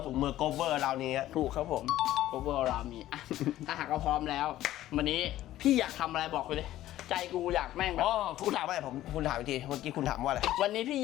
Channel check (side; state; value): right; quieter; 14.1 dB